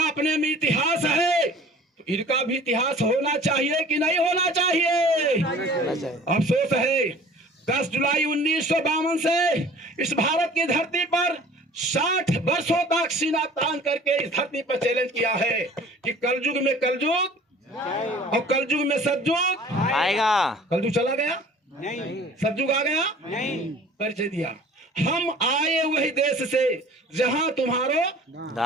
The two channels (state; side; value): normal; both; correlation 0.47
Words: अपने में इतिहास है। तो इनका भी इतिहास होना चाहिए कि नहीं होना चाहिए? अफसोस है 10 जुलाई 1952 से इस भारत की धरती पर 60 वर्षों तक सीना तान करके इस धरती पर चैलेंज किया है कि कलयुग में कलयुग और कलयुग में सतयुग आएगा। कलयुग चला गया, नहीं। सतयुग आ गया, नहीं। परिचय दिया। हम आए वही देश से जहां तुम्हारो